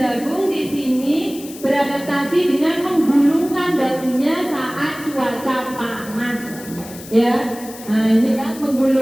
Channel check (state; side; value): noise; left; hiss, 16 dB below the sound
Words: di sini beradaptasi dengan menggulungkan daunnya saat cuaca panas. Ya, nah ini kan